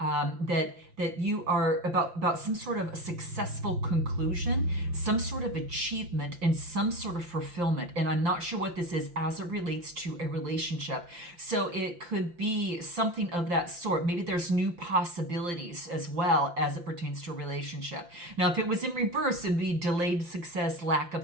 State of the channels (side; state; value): left; late; 5.8 ms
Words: that you are about some sort of a successful conclusion, some sort of achievement, and some sort of fulfillment. And I'm not sure what this is as it relates to a relationship. So it could be something of that sort. Maybe there's new possibilities as well as it pertains to a relationship. Now, if it was in reverse, it'd be delayed success, lack